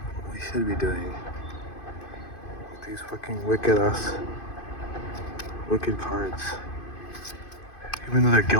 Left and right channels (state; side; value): late; right; 2.5 ms